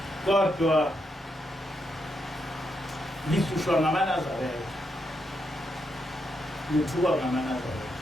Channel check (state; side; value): normal; both; correlation 0.81